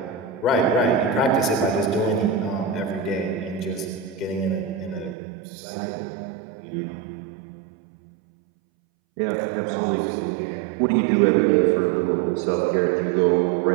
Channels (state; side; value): drops out; left; at 5.2 s